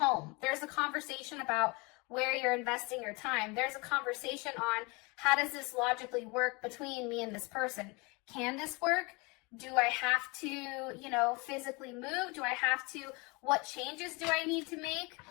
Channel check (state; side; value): quieter; right; 27.5 dB